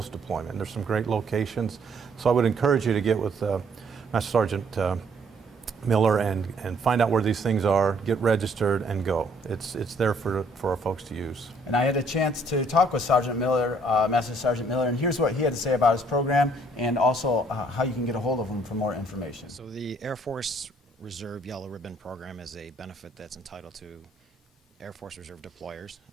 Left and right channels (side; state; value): both; normal; correlation 0.64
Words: There's some great locations. So I would encourage you to get with Master Sergeant Miller and find out where these things are, get registered, and go. It's there for our folks to use. And I had a chance to talk with Sergeant Miller, Master Sergeant Miller, and here's what he had to say about his program and also how you can get a hold of him for more information. So the Air Force Reserve Yellow Ribbon program is a benefit that's entitled to Air Force Reserve deployers.